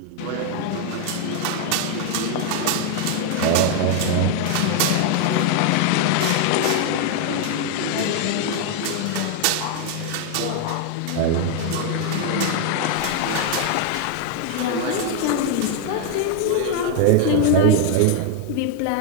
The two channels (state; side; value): different; both; correlation 0.01